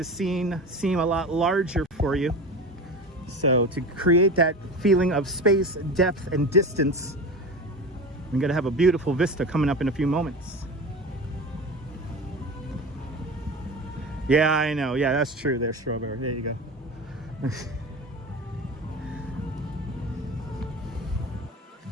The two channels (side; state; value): both; normal; correlation 0.30